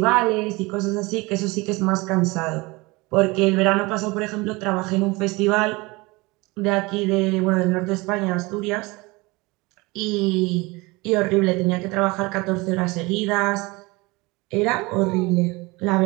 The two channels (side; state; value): left; quieter; 24.0 dB